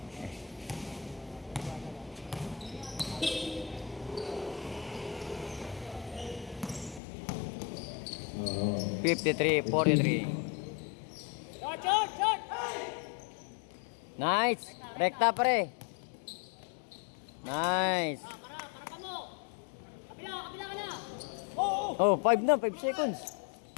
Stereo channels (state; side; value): drops out; right; at 7.0 s